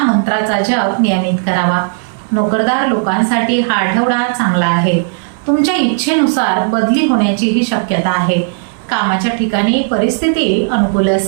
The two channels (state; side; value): silent; left; digital silence